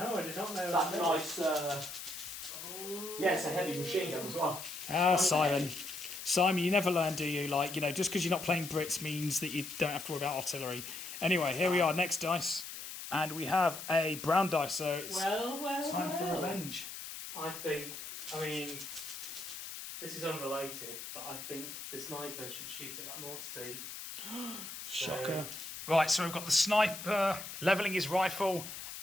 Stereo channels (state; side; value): noise; left; hiss, 9 dB below the sound